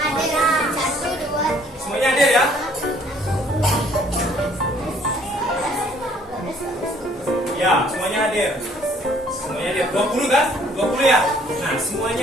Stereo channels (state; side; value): normal; both; correlation 0.60